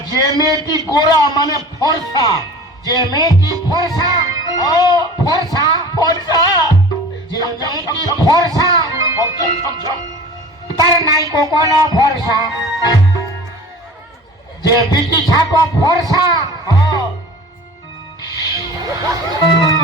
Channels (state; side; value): normal; both; correlation 0.40